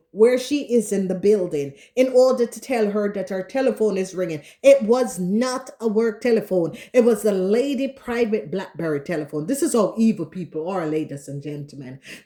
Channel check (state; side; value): identical; both; correlation 1.00